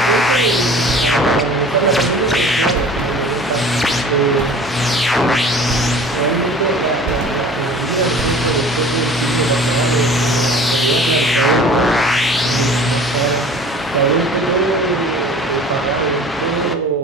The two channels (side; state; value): both; normal; correlation 0.44